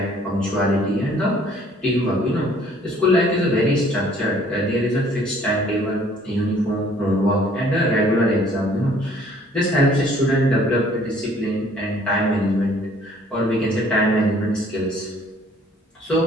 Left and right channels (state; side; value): normal; both; correlation 0.58